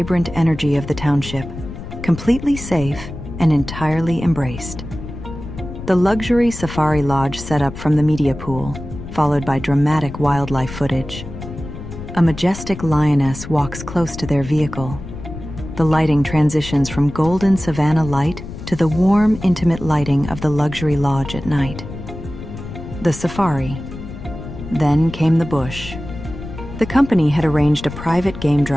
energy of the township, completely safe and entirely embraced. The luxury safari lodge set up from the media pool, followed by dramatic wildlife footage. A majestic lioness walks close to their vehicle. The lighting transitions from golden savanna light to the warm, intimate lighting of the luxury lodge at night. The safari. Then came the bush. The company had arranged a private game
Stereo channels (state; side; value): noise; left; rumble, 11 dB below the sound